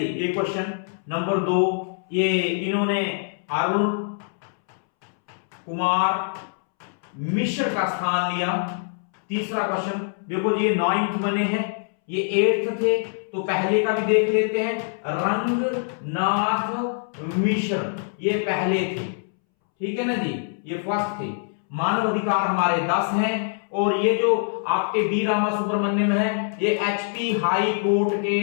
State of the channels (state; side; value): silent; right; 63 dB below the other